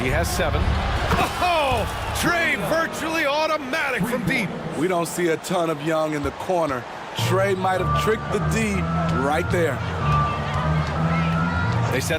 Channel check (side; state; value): both; identical; correlation 1.00